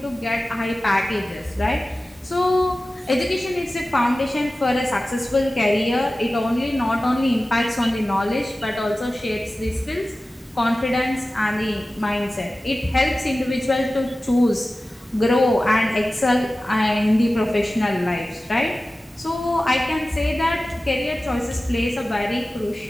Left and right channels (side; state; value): both; normal; correlation 0.96